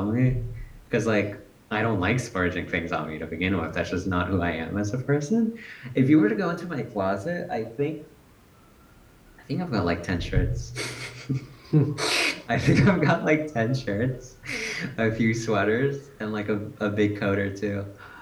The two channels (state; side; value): identical; both; correlation 1.00